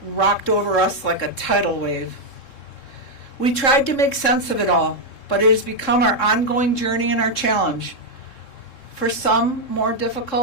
rocked over us like a tidal wave. We tried to make sense of it all, but it has become our ongoing journey and our challenge. For some, more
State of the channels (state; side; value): late; right; 3.7 ms